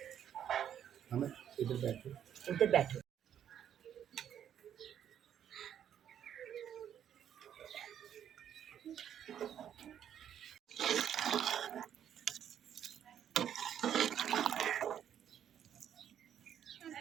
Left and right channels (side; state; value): left; quieter; 9.6 dB